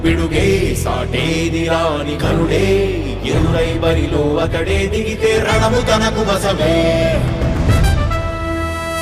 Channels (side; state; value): both; identical; correlation 1.00